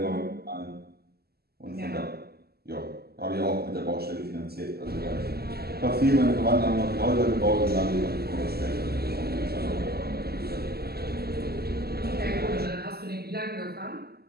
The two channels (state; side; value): late; left; 0.46 ms